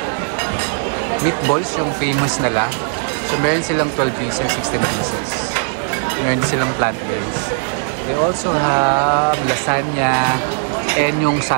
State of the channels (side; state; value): left; silent; 67 dB below the other